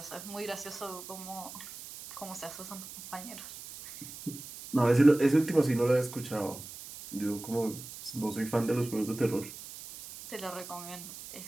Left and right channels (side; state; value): right; noise; hiss, 13 dB below the sound